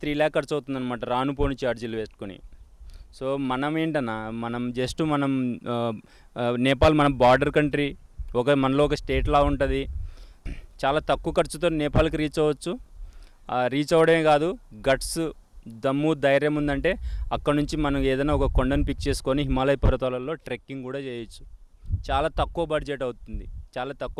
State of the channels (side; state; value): both; identical; correlation 1.00